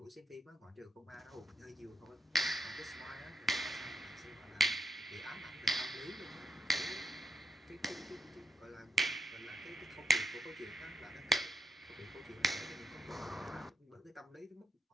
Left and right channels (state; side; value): normal; both; correlation 0.79